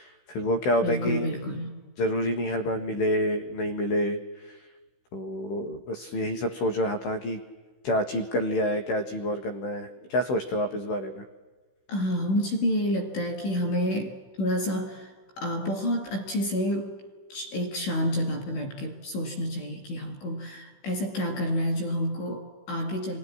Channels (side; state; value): right; late; 16 ms